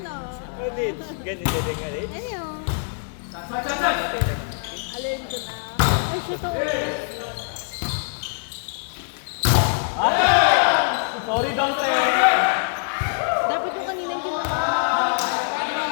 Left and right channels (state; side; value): silent; right; 63 dB below the other